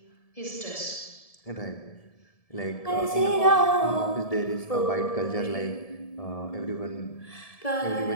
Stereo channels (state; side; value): late; right; 1.7 ms